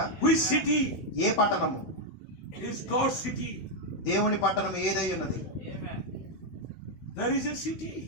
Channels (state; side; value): late; right; 16 ms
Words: Which city ఏ పట్టణము? is God's city? దేవుని పట్టణం ఏదై ఉన్నది? There is a city